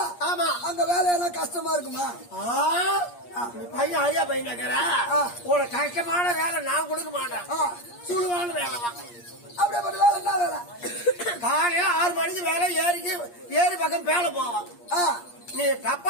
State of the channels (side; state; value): right; late; 8.5 ms